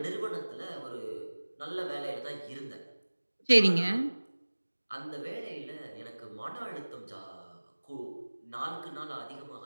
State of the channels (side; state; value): both; inverted; correlation -1.00